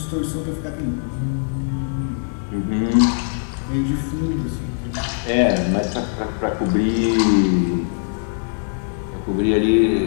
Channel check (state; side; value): silent; right; digital silence